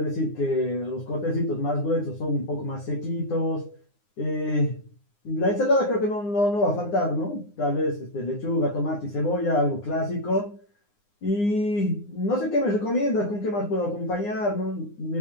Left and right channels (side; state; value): right; late; 9.7 ms